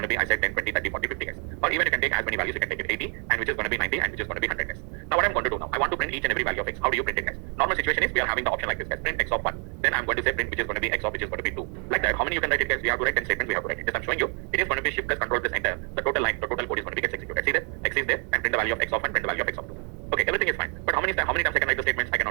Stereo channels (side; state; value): left; quieter; 38.3 dB